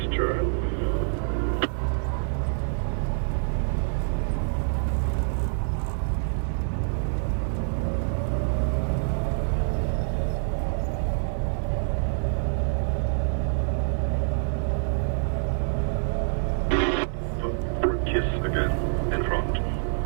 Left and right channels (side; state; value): left; silent; 61 dB below the other